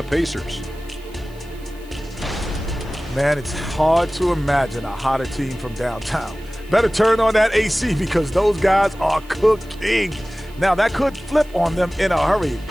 Pacers. Man, it's hard to imagine a hotter team from downtown. Better turn on that AC because those guys are cooking. Now, that could flip on them in a hurry,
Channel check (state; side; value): noise; right; hiss, 26 dB below the sound